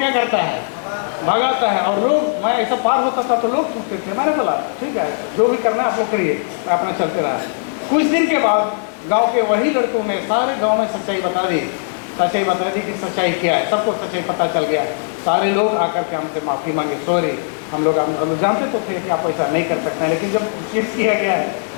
करता है? भगाता है। और लोग, मैं ऐसा पार होता था तो लोग थूकते थे। मैंने बोला ठीक है, जो भी करना है आप लोग करिए, मैं अपना चलते रहा। कुछ दिन के बाद गांव के वही लड़कों ने सारे गांव में सच्चाई बता दी कि सच्चाई क्या है। सबको सच्चाई पता चल गया। सारे लोग आकर के हमसे माफ़ी मांगे, सॉरी, हम लोग जानते तो थे कि आप ऐसा नहीं कर सकते हैं, लेकिन जब केस किया गया है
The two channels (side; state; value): right; silent; digital silence